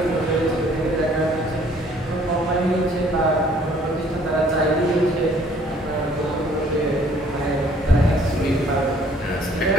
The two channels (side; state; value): both; normal; correlation 0.59